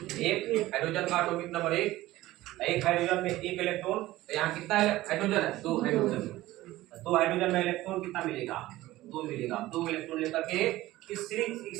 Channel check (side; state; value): left; quieter; 16.8 dB